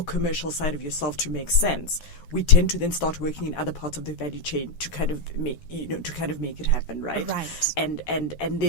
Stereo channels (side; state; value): right; late; 12 ms